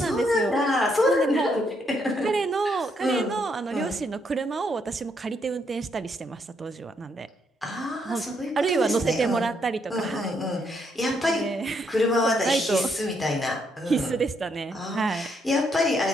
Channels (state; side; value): normal; both; correlation 0.75